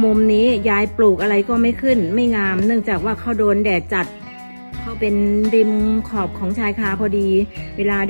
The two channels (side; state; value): both; inverted; correlation -1.00